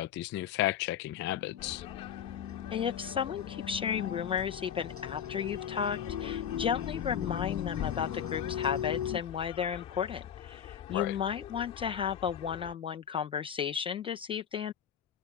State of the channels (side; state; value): right; quieter; 8.6 dB